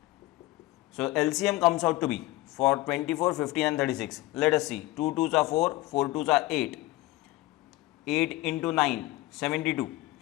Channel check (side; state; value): right; quieter; 18.5 dB